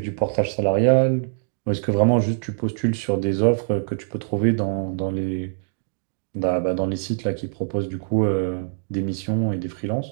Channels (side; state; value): left; silent; 63 dB below the other